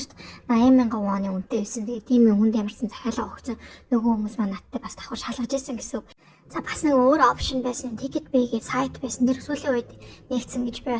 80,000 вон үнэтэй байсан. Тэгээ тийм хүнд ямарсан захиалга өгсөн нөгөө хүмүүс маань надтай бас давхар шалгаж ийсэн гэсэн. За бас нэг өөр опшн байсан. Ticket Bay-гээ сайт байсан. Тэр сүүлийн үед нэгдсэн гэж би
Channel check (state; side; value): identical; both; correlation 1.00